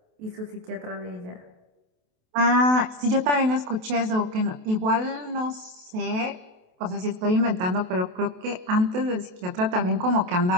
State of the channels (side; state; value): left; late; 28 ms